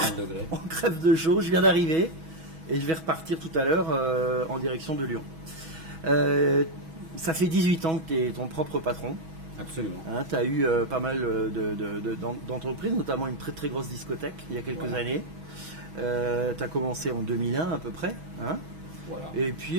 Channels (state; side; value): late; left; 6.2 ms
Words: degrés. On crève de chaud, je viens d'arriver et je vais repartir tout à l'heure en direction de Lyon. Ça fait 18 ans que tu es ton propre patron. Absolument. Tu as eu pas mal d'entreprises, notamment une très très grosse discothèque il y a quelques années. Tu as commencé en 2001 à peu près. Voilà. Et puis,